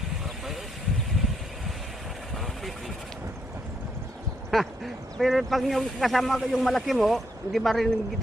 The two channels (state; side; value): normal; both; correlation 0.76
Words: Parang bayos. Parang pipi. Pero pag yung kasama ko yung malaki mo, hindi marinig